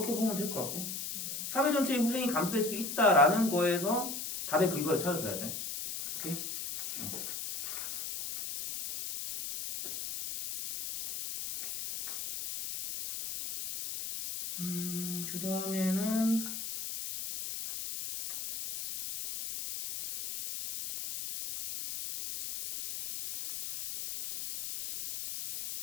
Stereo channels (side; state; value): left; noise; hiss, 6 dB below the sound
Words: 보면 될 것 같고, 사회 전체의 후생이 감소될 수 있다라는 거에서 답의 근거를 찾아줘야 돼. 오케이? 그 다음에는